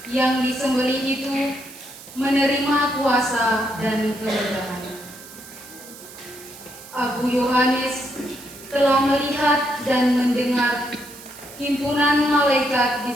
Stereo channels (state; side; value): noise; right; hiss, 17 dB below the sound